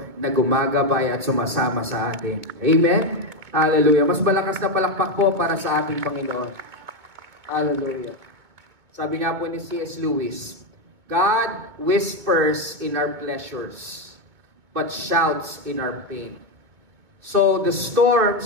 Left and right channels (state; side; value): late; left; 2.3 ms